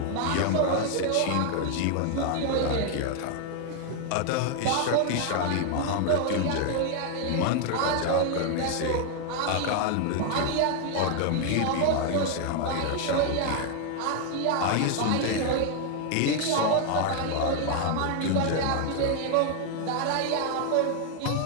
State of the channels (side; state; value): both; different; correlation 0.00